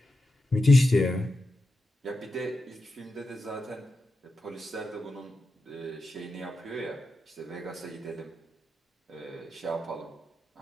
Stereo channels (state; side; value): normal; both; correlation 0.89